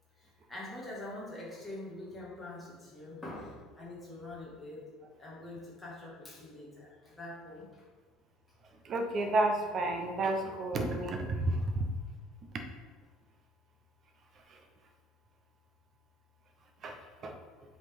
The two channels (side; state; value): both; normal; correlation 0.67